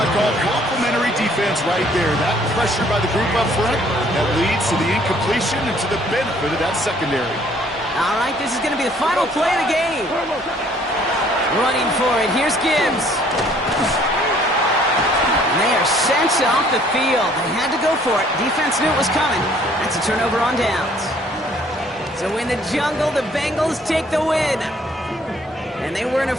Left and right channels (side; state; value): both; normal; correlation 0.60